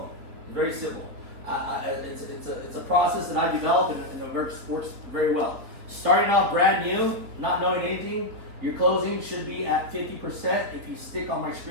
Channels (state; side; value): late; left; 3.9 ms